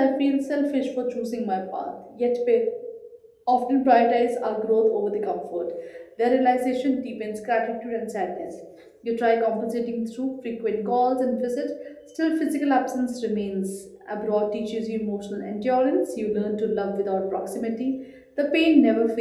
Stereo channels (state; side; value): identical; both; correlation 1.00